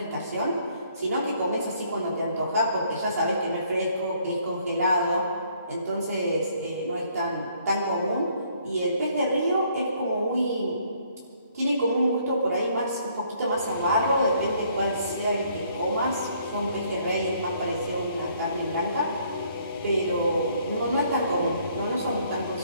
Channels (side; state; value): both; inverted; correlation -0.65